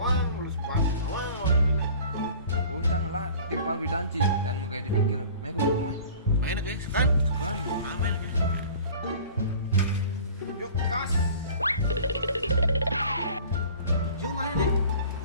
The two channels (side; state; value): both; inverted; correlation -0.45